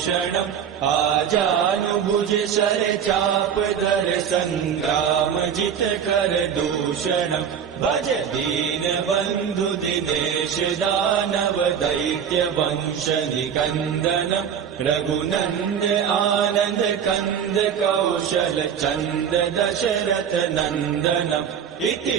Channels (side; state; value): left; quieter; 8.0 dB